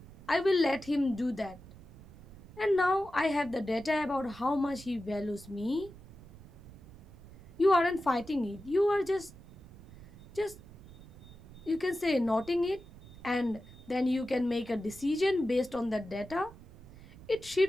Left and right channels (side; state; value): right; noise; rumble, 18 dB below the sound